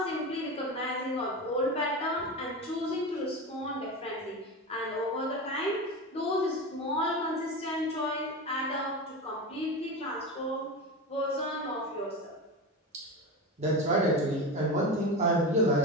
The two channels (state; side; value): normal; both; correlation 0.23